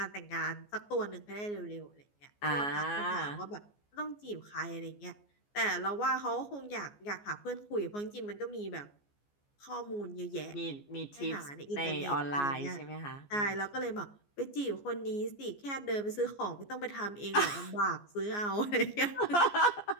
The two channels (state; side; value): late; right; 14 ms